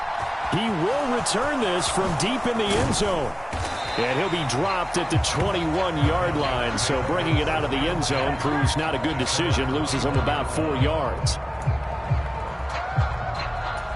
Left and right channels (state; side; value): identical; both; correlation 1.00